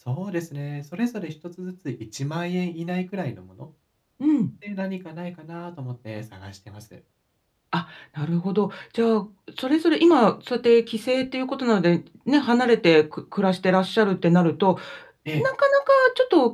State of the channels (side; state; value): both; identical; correlation 1.00